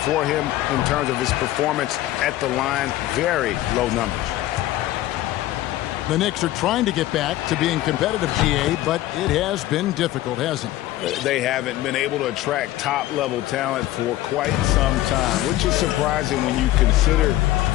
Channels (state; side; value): quieter; right; 15.2 dB